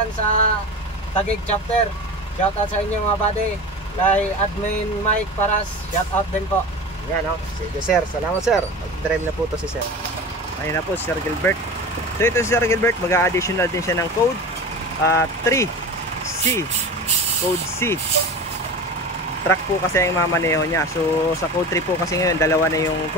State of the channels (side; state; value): both; normal; correlation 0.31